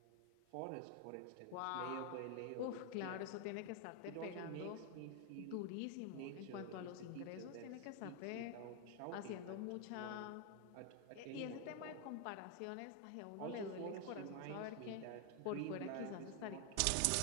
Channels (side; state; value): both; different; correlation 0.01